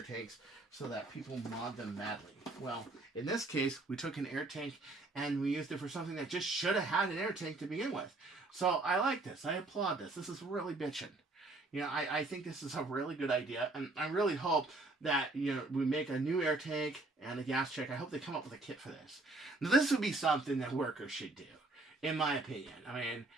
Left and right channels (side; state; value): left; quieter; 3.1 dB